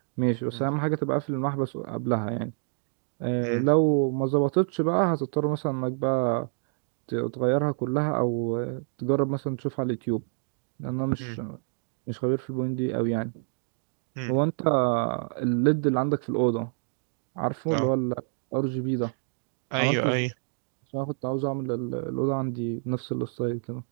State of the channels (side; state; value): left; silent; digital silence